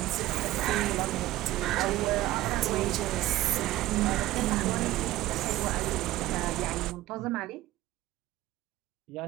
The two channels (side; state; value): left; quieter; 15.8 dB